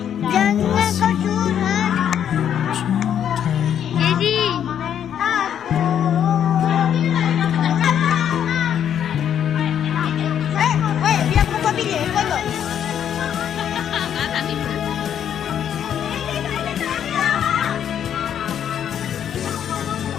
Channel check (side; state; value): right; quieter; 9.3 dB